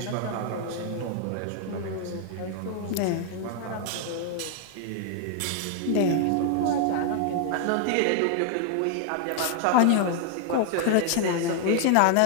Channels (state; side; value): different; both; correlation 0.00